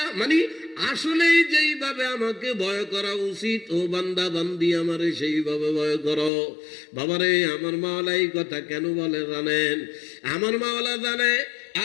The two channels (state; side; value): drops out; right; at 6.3 s